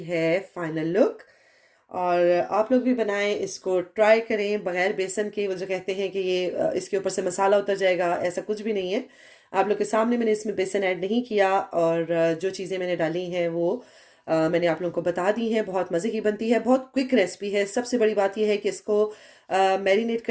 फाइनल लुक। और आप लोग भी बनाएं, इसको ट्राई करें बगैर बेसन के। वो जो कहते हैं कि ये इसके ऊपर से मसाला उतर जाएगा, ऐसा कुछ भी नहीं है। आप लोग के सामने मैंने इसमें बेसन ऐड नहीं किया, और जो चीज़ें मैंने डाली हैं वो मैंने आप लोगों को बता दी हैं। बहुत मज़े की बनती है, बहुत क्विक रेसिपी है। सबसे बड़ी बात यह है कि इसको मैरिनेट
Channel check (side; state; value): both; identical; correlation 1.00